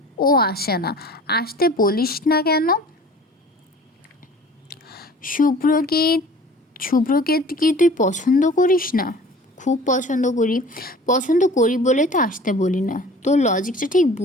ও আসে না। আসতে বলিস না কেন? শুভ্রকে কি তুই পছন্দ করিস না? খুব পছন্দ করি বলে তো আসতে বলি না। তোর লজিকটা ঠিক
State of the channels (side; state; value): both; normal; correlation 0.45